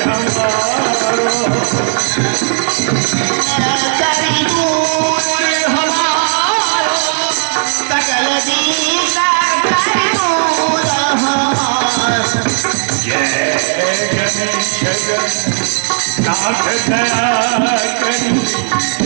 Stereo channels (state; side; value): silent; left; digital silence